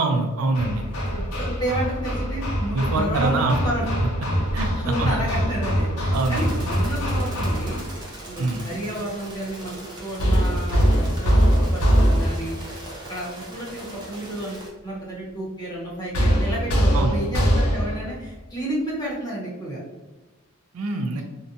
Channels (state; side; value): normal; both; correlation 0.75